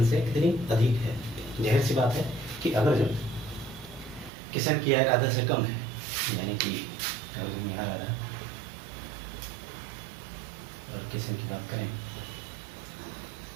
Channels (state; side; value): drops out; left; at 4.3 s